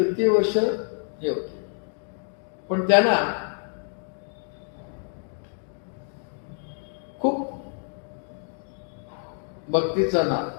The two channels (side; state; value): right; silent; 57 dB below the other